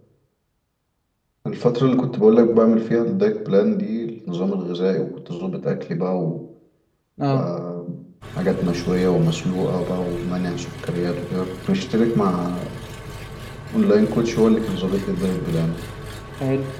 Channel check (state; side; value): identical; both; correlation 1.00